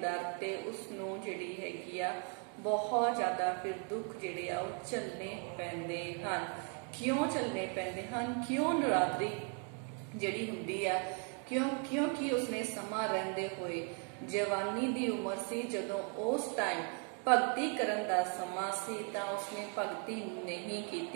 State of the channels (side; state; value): left; quieter; 39.9 dB